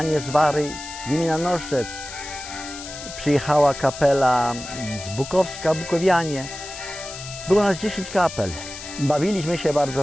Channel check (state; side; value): noise; left; hiss, 12 dB below the sound